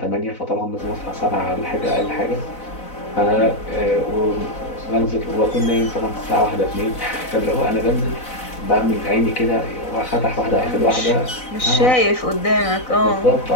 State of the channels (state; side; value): late; right; 4.0 ms